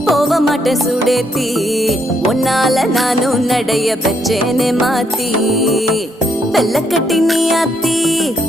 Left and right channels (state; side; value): normal; both; correlation 0.74